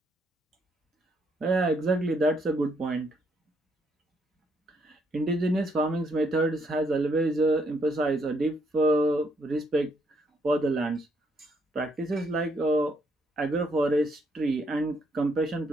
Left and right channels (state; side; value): normal; both; correlation 0.73